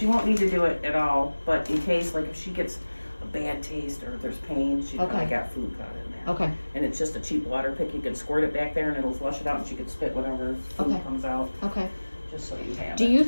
won't need to do it at all, but in case, like if she gets a bad taste or if there's pain, she probably Okay. got food caught in there. okay, And it's just a cheap water pick. You can squirt it back there and it'll flush it out, and she can spit whatever food Okay. comes out. okay. Just so you have Do it. you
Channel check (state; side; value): inverted; both; correlation -1.00